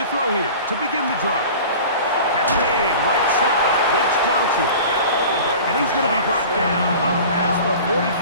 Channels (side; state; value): both; inverted; correlation -0.39